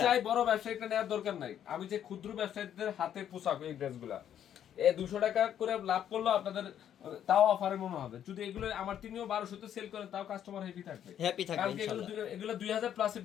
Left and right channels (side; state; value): right; quieter; 10.0 dB